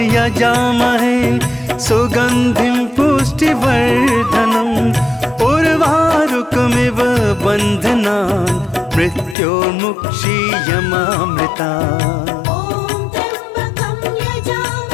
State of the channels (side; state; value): right; drops out; at 9.3 s